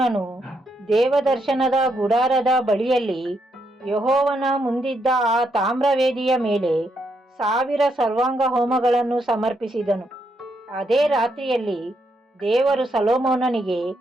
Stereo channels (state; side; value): normal; both; correlation 0.78